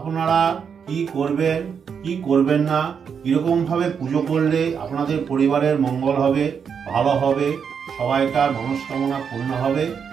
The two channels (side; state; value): left; quieter; 6.8 dB